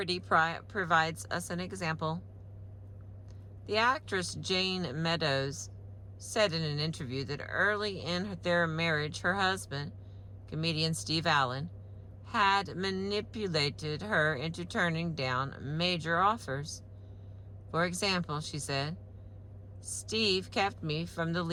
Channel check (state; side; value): identical; both; correlation 1.00